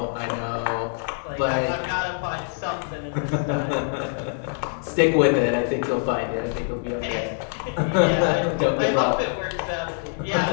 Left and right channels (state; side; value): silent; right; digital silence